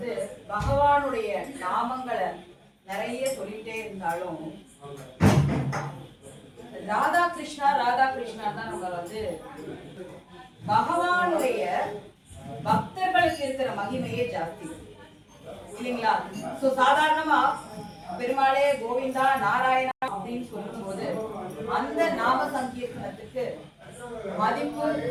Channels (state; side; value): identical; both; correlation 1.00